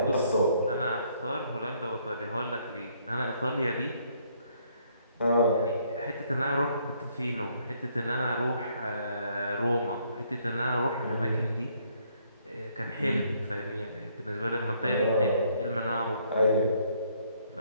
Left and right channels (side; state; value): both; inverted; correlation -0.68